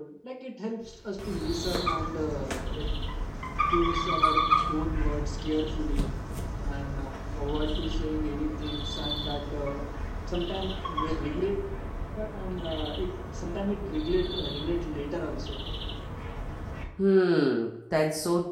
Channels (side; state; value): both; identical; correlation 1.00